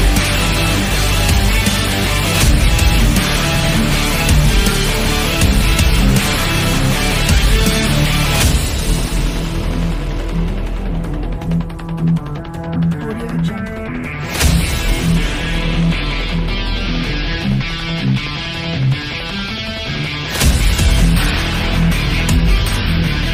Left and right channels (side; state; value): both; identical; correlation 1.00